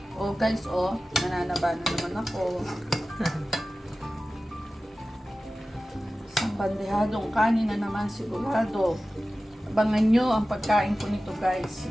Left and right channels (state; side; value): normal; both; correlation 0.95